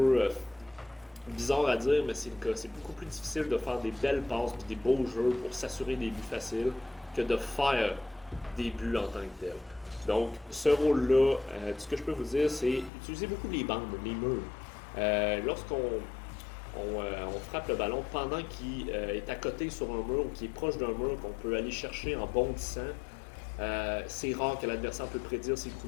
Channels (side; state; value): right; drops out; at 12.9 s